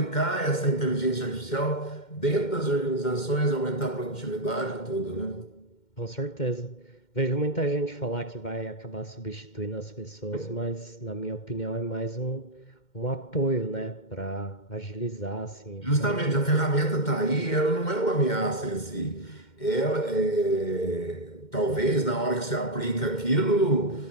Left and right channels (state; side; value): late; right; 2.1 ms